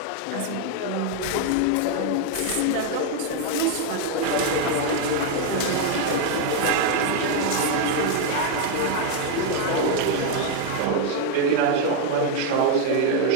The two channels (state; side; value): different; both; correlation 0.01